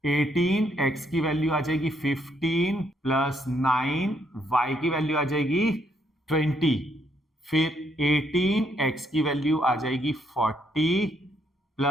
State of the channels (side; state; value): both; normal; correlation 0.73